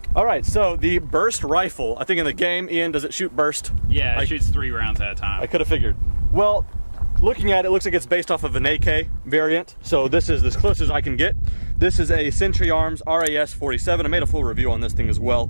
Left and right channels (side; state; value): both; inverted; correlation -1.00